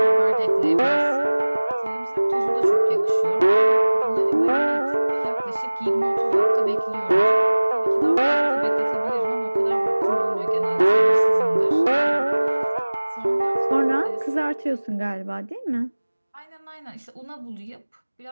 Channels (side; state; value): both; inverted; correlation -1.00